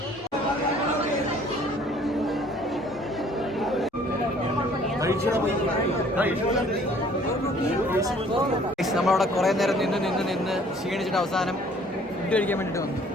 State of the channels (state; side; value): normal; both; correlation 0.56